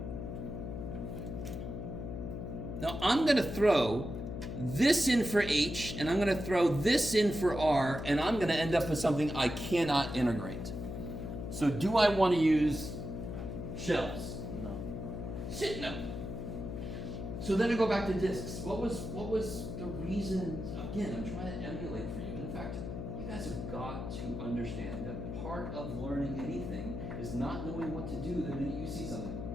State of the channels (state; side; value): noise; left; hum, 6 dB below the sound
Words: Now I'm going to throw this in for h, and I'm going to throw this in for r, and I'm going to end up with something I cannot integrate. So do I want to use shells? No. Shit, no. So then I go back to discs. What was the reason? Again, I'm trying to emulate for you. In fact, you guys have got to understand that part of learning anything is not knowing what to do the minute you see something.